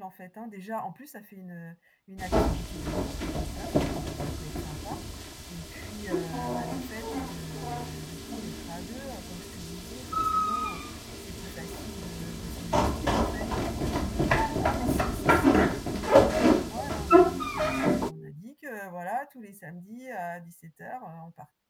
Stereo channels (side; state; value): both; identical; correlation 1.00